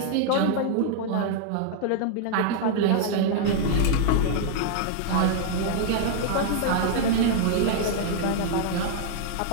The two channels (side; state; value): both; different; correlation 0.00